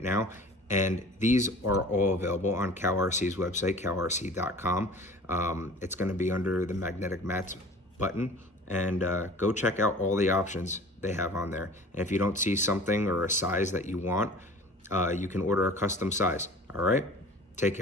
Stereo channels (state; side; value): normal; both; correlation 0.43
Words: now. And these are all available on CowRC's website, cowrc.com. It's going to be under the magnetic mats button. And go check out all the options they have on there. And if you don't see something or a size that you want, you can order a custom size. All right? Take